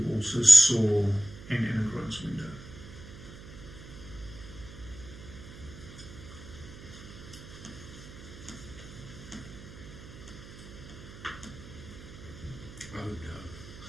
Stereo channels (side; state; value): right; noise; hum, 15 dB below the sound